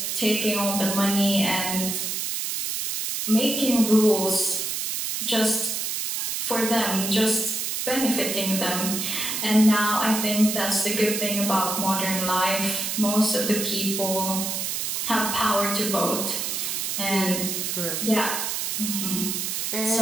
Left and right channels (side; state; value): right; noise; hiss, 2 dB below the sound